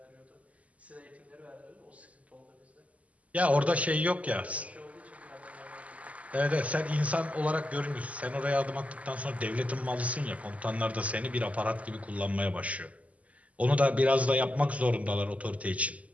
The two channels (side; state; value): left; late; 0.069 ms